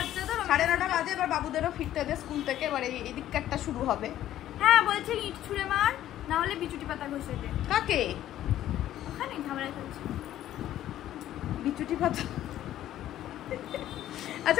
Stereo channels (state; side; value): quieter; right; 12.6 dB